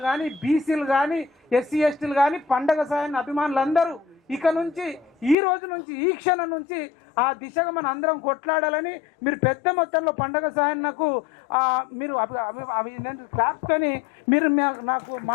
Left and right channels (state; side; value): drops out; right; at 5.4 s